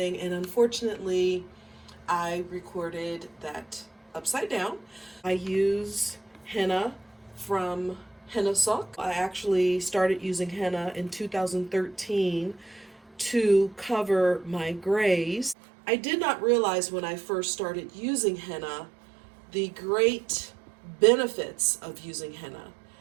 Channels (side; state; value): left; drops out; at 15.6 s